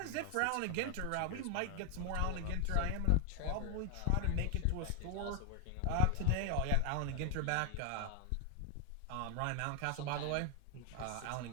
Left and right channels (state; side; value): different; both; correlation 0.00